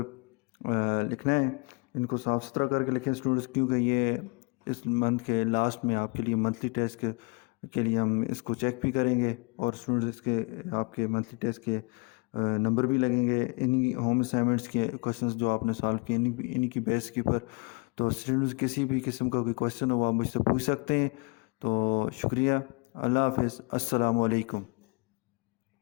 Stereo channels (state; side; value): quieter; right; 31.0 dB